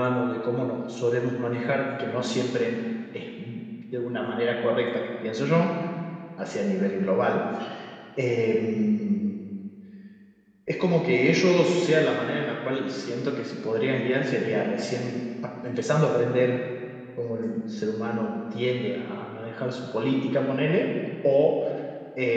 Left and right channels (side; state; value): both; identical; correlation 1.00